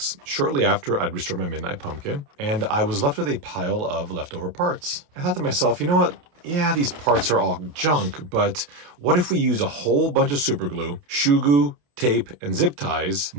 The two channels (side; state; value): left; late; 28 ms